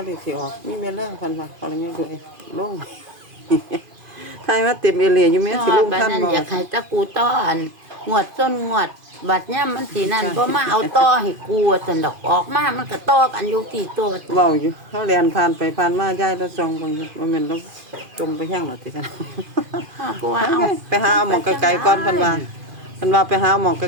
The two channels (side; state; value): left; late; 2.5 ms